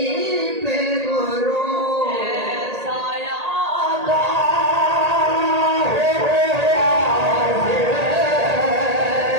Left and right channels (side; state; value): left; late; 1.8 ms